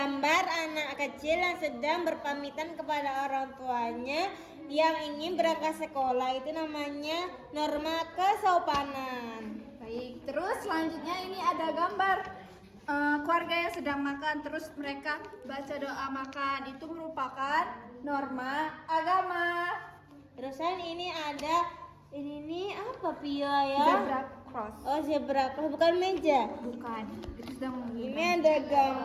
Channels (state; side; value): identical; both; correlation 1.00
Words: anak kecil yang sedang berpamitan kepada orang tuanya yang ingin berangkat sekolah. Itu namanya norma kesopanan. Baik, terus selanjutnya ini ada gambar keluarga yang sedang makan terus mereka baca doa makan. Itu merupakan norma agama. Terusan ini ada ini apa Pia ya? Zebra cross. Oh, zebra cross, bukan meja. Bukan. Itu sedang Ini ada